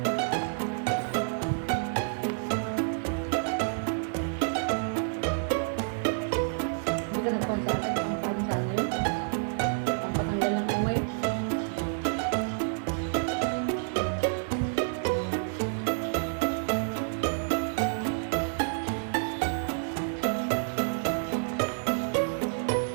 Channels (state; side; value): silent; left; digital silence